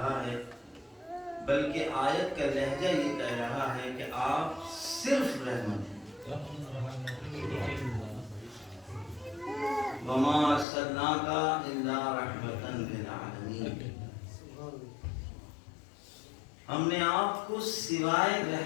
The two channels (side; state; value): right; drops out; at 10.7 s